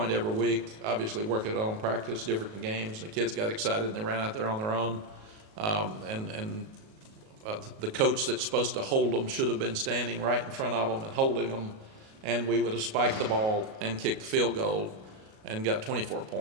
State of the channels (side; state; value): left; late; 37 ms